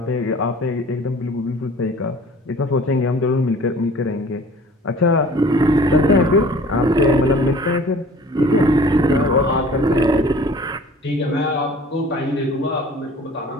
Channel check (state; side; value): normal; both; correlation 0.48